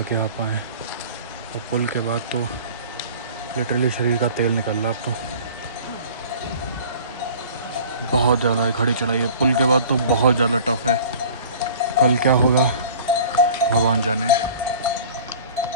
के आ पाए हैं। और पुल के बाद तो लिटरली शरीर का तेल निकल रहा अब तो। बहुत ज़्यादा है खड़ी चढ़ाई है। पुल के बाद तो बहुत ज़्यादा टफ है। कल क्या होगा भगवान जाने।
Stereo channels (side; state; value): both; inverted; correlation -0.44